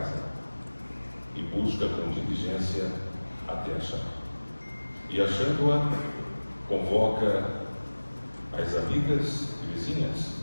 e busca com diligência até achar. E achando-a, convoca as amigas e vizinhas,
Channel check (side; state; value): both; inverted; correlation -1.00